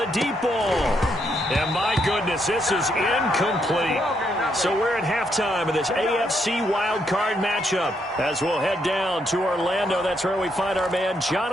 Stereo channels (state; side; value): normal; both; correlation 0.76